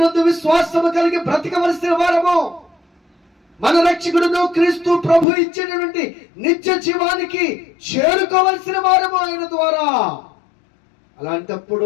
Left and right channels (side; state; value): right; drops out; at 5.2 s